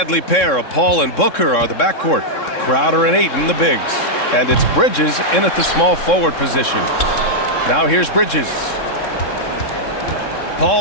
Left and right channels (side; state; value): right; late; 3.7 ms